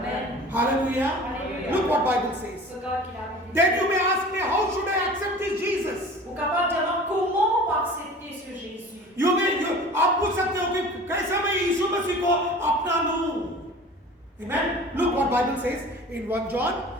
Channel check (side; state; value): both; normal; correlation 0.41